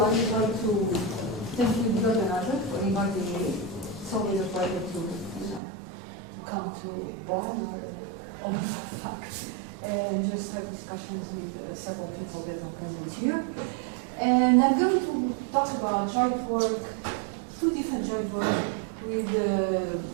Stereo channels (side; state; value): left; drops out; at 5.6 s